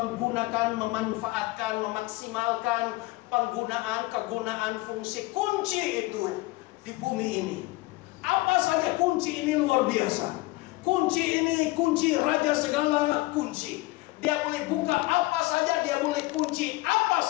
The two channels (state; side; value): quieter; right; 21.0 dB